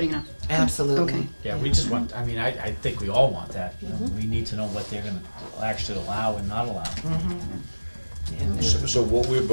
it off. Absolutely. Okay. Yeah, we just want, I mean, I think we all want that. We need to know what they're gonna actually allow and not allow. So what we're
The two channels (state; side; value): inverted; both; correlation -1.00